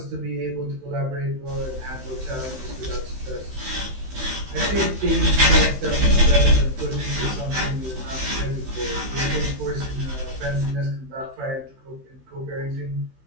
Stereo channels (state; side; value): late; left; 15 ms